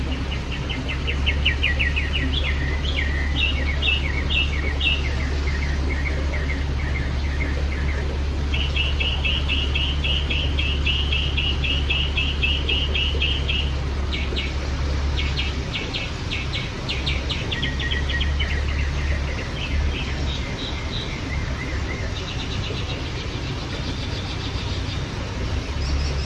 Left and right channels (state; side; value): identical; both; correlation 1.00